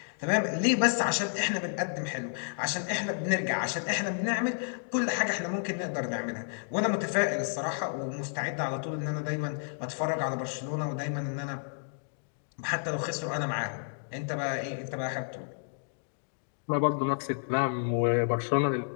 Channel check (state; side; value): silent; right; digital silence